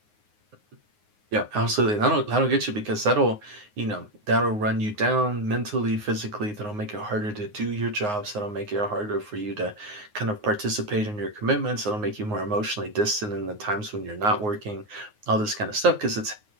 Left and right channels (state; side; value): late; left; 9.6 ms